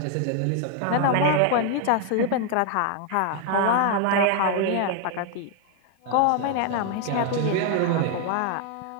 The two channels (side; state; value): both; different; correlation 0.00